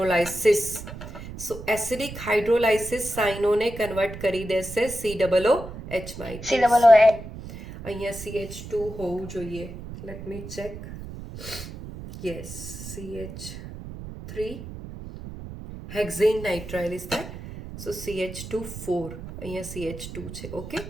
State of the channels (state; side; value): noise; right; rumble, 11 dB below the sound